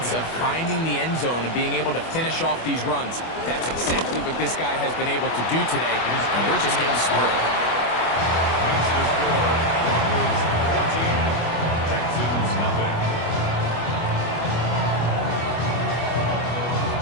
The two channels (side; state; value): right; late; 25 ms